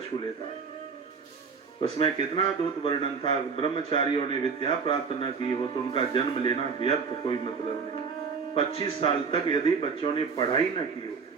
लेता है। उसमें कितना अद्भुत वर्णन था। ब्रह्मचारियों ने विद्या प्राप्त न की हो तो उनका जन्म लेना व्यर्थ, कोई मतलब नहीं। 25 साल तक यदि बच्चों ने पढ़ाई न की हो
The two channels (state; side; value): quieter; left; 5.4 dB